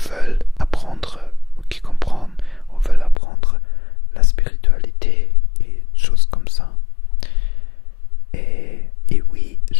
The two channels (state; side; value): drops out; right; at 3.2 s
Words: apprendre, qui comprennent ou veulent apprendre la spiritualité et choses comme ça. Et oui,